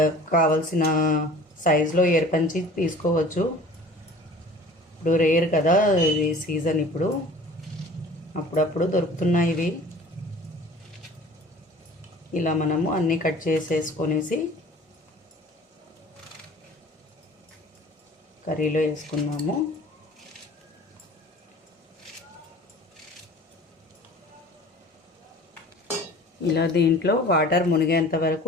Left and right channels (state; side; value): normal; both; correlation 0.45